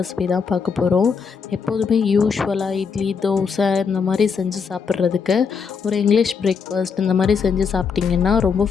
தான் பார்க்க போகிறோம். எப்போதுமே யூஸ்வலாக இட்லி தோசை இந்த மாதிரி செஞ்சு சாப்பிட்றதுக்கு ஒரு இங்கிலீஷ் பிரேக்ஃபாஸ்ட் இந்த மாதிரி செஞ்சு சாப்பிட்டிங்கன்னா ரொம்ப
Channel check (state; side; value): quieter; right; 5.9 dB